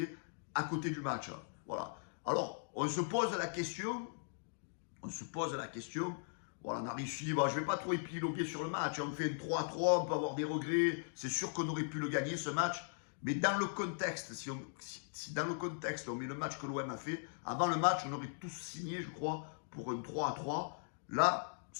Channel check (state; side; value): silent; right; digital silence